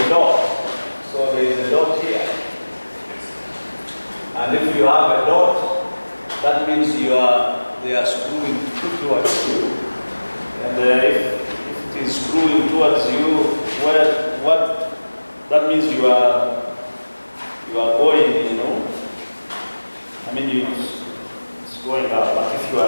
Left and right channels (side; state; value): both; inverted; correlation -1.00